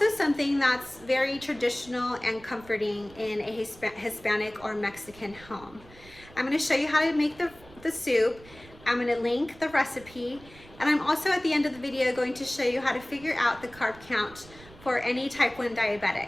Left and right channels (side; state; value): right; noise; rumble, 22 dB below the sound